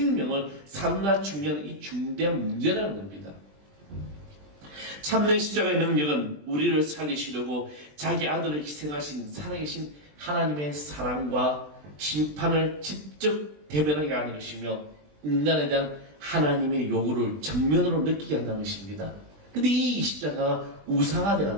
삶나 중요한 이 중대한 문제라는 겁니다. 참된 십자가의 능력은 우리를 살리시려고 자기 아들을 희생하신 살아계신 하나님의 사랑과 심판을 직접 대변하게 하는 것이며 인간에 대한 하나님의 요구를 정면으로 느끼게 한다는 것입니다. 근데 이 십자가가 우상화되어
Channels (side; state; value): left; late; 20 ms